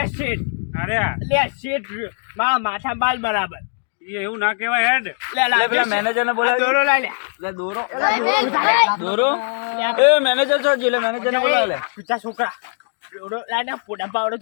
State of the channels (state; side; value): silent; right; 66 dB below the other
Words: શેઠ અરે આ, લે શેઠ મારા માથા બાલ બરાબર એ એવું ના કહેવાય હેડ. લે લે પેલા મેનેજર ને બોલાવી દોરો લઈ લે લે દોરો દોરો એ મેનેજર છો જી લે મેનેજર ને બોલાવે લે તું છોકરા દોરો લઈ ને પોડા પાવડો